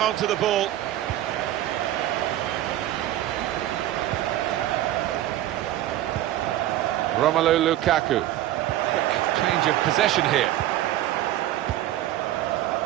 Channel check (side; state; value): left; quieter; 13.7 dB